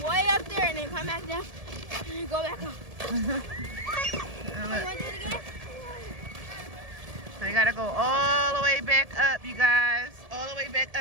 way up there and then come back down and go back up. You want to do it again? So you gotta go all the way back up, you guys. All the way back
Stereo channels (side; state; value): left; late; 1.7 ms